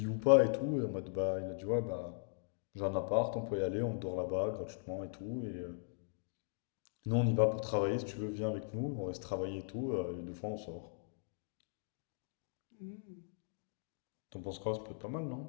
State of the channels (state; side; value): silent; right; digital silence